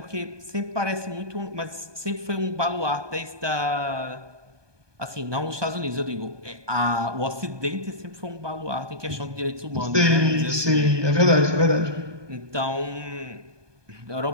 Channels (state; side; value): late; left; 1.2 ms